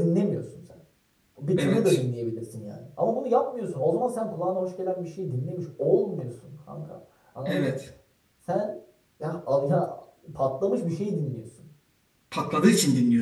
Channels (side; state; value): both; identical; correlation 1.00